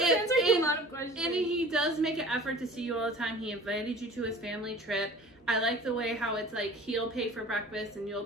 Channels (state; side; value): normal; both; correlation 0.43